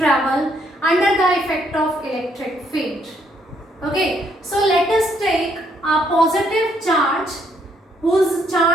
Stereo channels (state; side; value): normal; both; correlation 0.70